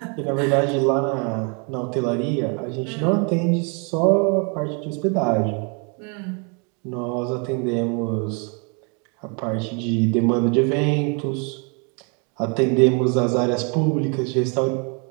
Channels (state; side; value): quieter; left; 35.7 dB